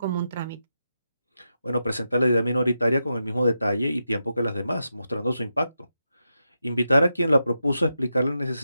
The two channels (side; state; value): both; inverted; correlation -0.87